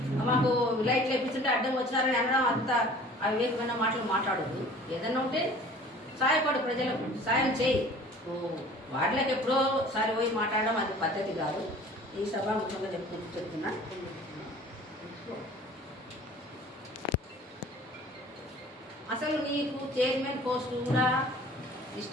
మాకు లైట్లు వేపిస్తుంటే అడ్డం వచ్చినారని అనడం అంత అవివేకమైన మాటలు మాట్లాడద్దు. ఏదన్నా ఉంటే సాయపడు, ప్రజలకు సాయం చేయి. వాటిలోకి ఎప్పుడో సారి పోయి మాట్లాడడం అది పద్ధతి కాదు. ఈ సభాముఖంగా చెప్తున్నా. అసలు నీకు చైర్మన్ పోస్ట్ కూడా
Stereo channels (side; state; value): both; normal; correlation 0.47